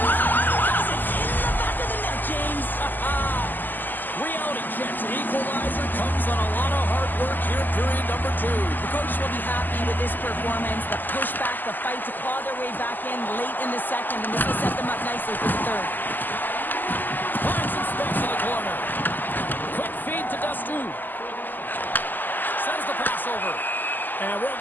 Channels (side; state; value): right; late; 0.088 ms